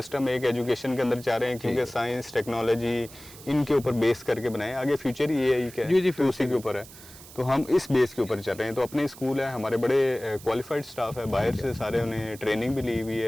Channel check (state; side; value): noise; right; hiss, 18 dB below the sound